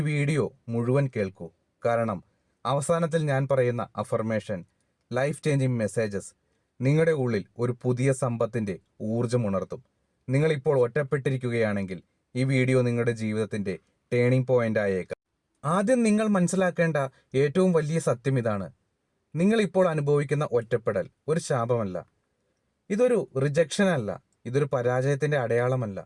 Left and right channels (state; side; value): identical; both; correlation 1.00